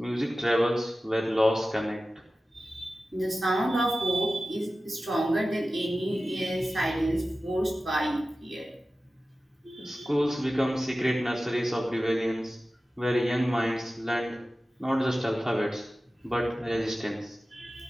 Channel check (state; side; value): normal; both; correlation 0.95